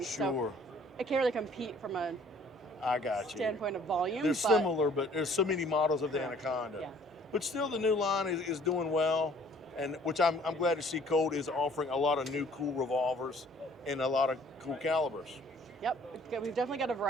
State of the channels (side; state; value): both; normal; correlation 0.56